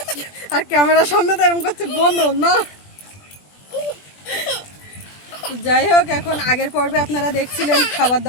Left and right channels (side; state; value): right; late; 20 ms